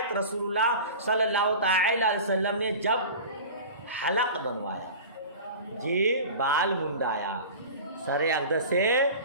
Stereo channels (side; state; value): both; inverted; correlation -0.35